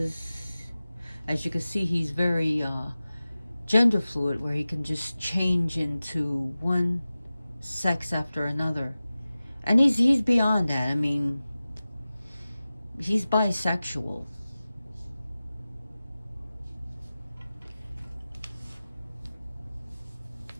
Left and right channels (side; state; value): both; inverted; correlation -0.96